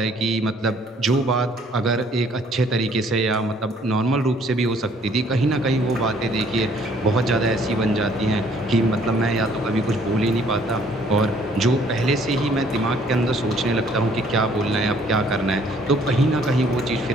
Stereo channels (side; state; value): both; normal; correlation 0.61